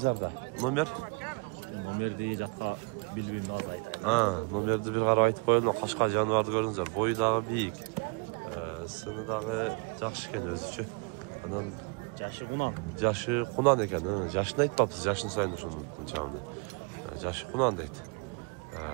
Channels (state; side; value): quieter; left; 32.9 dB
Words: Номер? Номерди жатка билбейм алайт. Номерди бир карап айтып коелу. Кашка жаныбарды көрүңүздөр. Бою дагы бийик. Сыны дагы жакшы экен өзүчө. Анан Жашы кунан экен. Жашын айтпапсыз, жашын сайын ушуну чамды. Жашы кунан дейт.